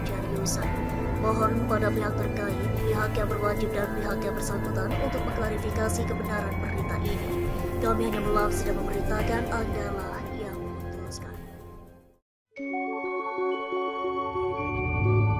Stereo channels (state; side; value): identical; both; correlation 1.00